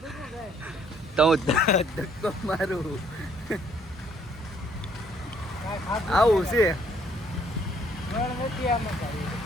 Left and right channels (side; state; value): both; normal; correlation 0.64